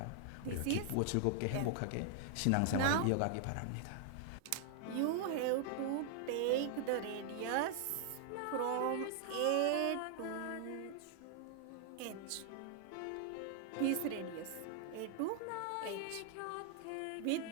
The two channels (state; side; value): different; both; correlation -0.01